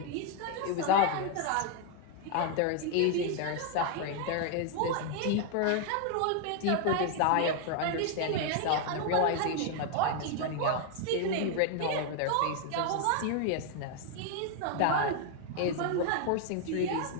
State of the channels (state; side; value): different; both; correlation 0.00